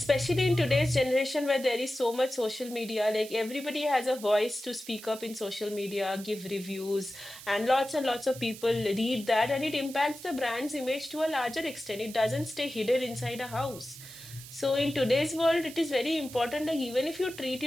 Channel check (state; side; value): noise; right; hiss, 15 dB below the sound